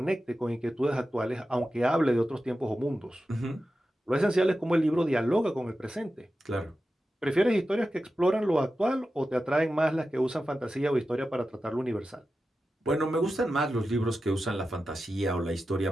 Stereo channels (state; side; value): normal; both; correlation 0.92